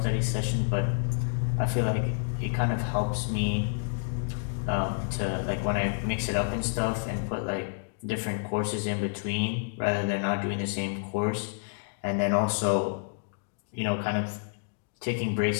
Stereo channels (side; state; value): right; silent; digital silence